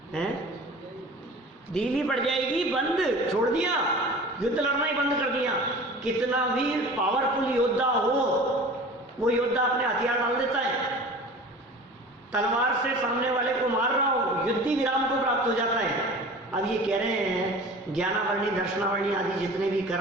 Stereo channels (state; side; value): normal; both; correlation 0.40